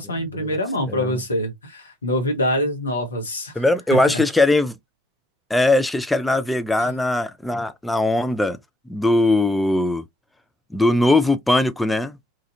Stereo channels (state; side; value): normal; both; correlation 0.67